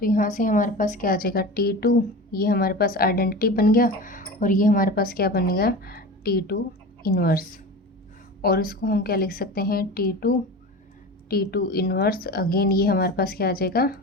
यहाँ से हमारे पास क्या आ जाएगा, T2, ये हमारे पास आइडेंटिटी बन गया, और ये हमारे पास क्या बन गया, T2 इन्वर्स। और इसको हम क्या लिख सकते हैं, T2 इन्वर्स, अगेन ये हमारे पास क्या आ जाएगा,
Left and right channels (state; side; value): normal; both; correlation 0.31